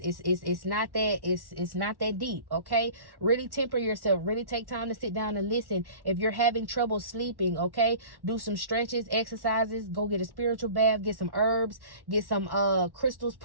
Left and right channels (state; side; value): late; left; 1.1 ms